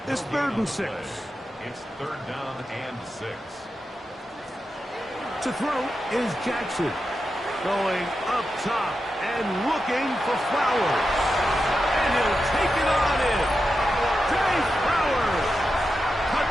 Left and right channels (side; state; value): both; normal; correlation 0.89